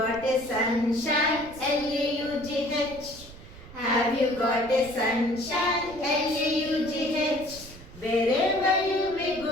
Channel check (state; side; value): noise; right; rumble, 18 dB below the sound